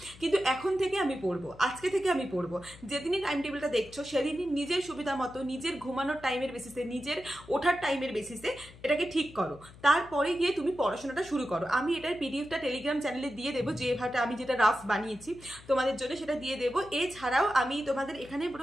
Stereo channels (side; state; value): left; noise; hum, 20 dB below the sound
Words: কিন্তু এখন থেকে আমি পড়বো, আজকে থেকে আমি পড়বো। যেদিনই টাইম টেবিলটা দেখছো সেদিনই নিজের সুবিধা মতো, নিজের ঘুমানোর টাইমের বেসিসে, নিজের ওঠার টাইমের বেসিসে এটাকে ঠিক করো। তারপরে গিয়ে তুমি পড়াশোনাটা শুরু করো। আমি এটার পিডিএফটা টেলিগ্রাম চ্যানেলে দিয়ে দেবো, আমি যেটা রাফ বানিয়েছি তোমাদের জন্য সেটা দিয়ে দেবো। এছাড়াও আমি তোমাদের এখানে